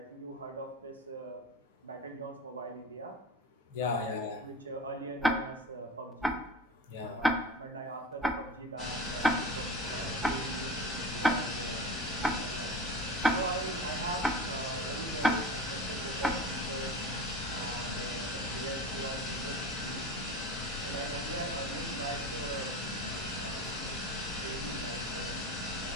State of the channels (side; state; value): both; normal; correlation 0.31